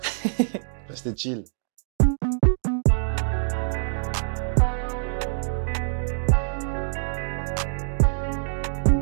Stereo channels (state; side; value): silent; left; digital silence